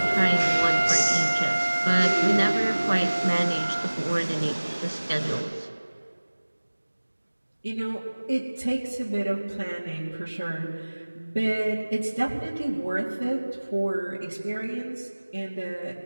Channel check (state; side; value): inverted; both; correlation -1.00